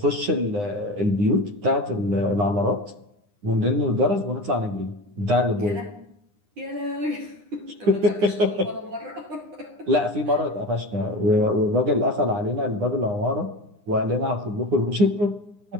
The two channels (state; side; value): late; left; 9.8 ms